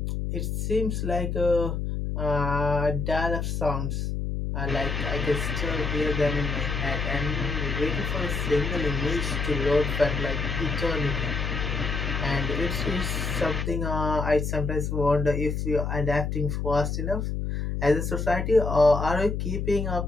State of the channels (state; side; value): noise; left; hum, 2 dB below the sound